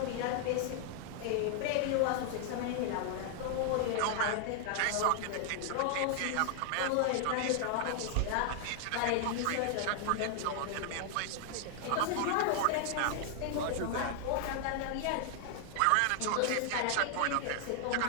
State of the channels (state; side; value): different; both; correlation 0.00